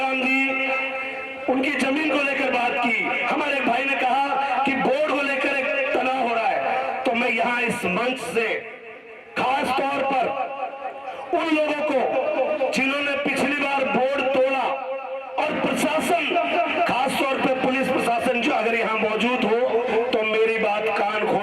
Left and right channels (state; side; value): identical; both; correlation 1.00